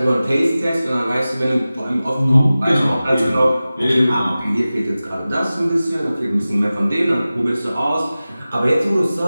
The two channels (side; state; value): both; inverted; correlation -0.96